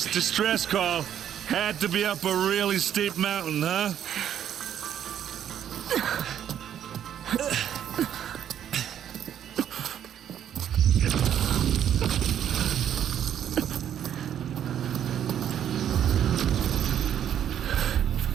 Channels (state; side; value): quieter; left; 9.9 dB